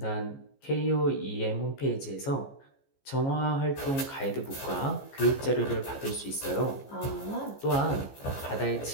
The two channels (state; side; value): late; right; 15 ms